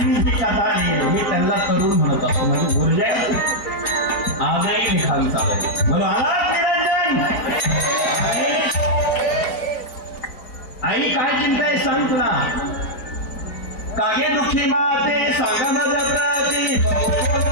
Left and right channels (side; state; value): right; late; 4.0 ms